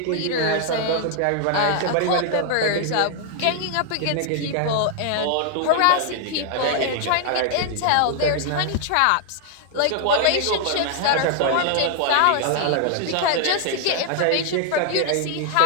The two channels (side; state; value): both; different; correlation 0.00